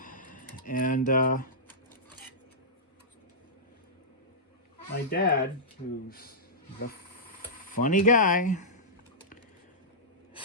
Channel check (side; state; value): both; normal; correlation -0.15